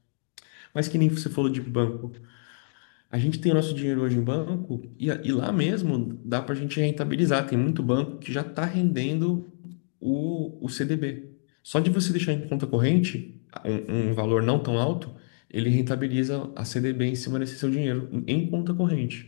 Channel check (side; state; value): right; silent; 60 dB below the other